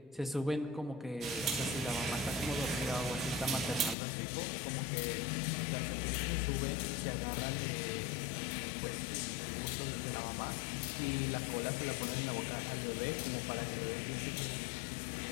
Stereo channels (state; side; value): drops out; right; at 4.0 s